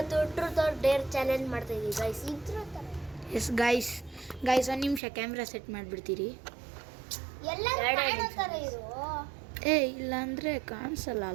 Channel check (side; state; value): left; drops out; at 5.0 s